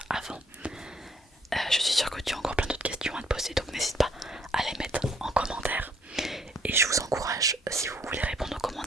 avant. Je suis sûre que tu as encore plein d'autres questions à te poser, donc n'hésite pas à les mettre en commentaire. Et je vous encourage, si vous voulez répondre aux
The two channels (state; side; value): normal; both; correlation 0.66